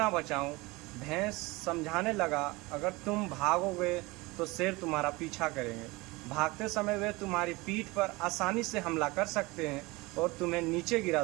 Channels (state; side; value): quieter; left; 22.9 dB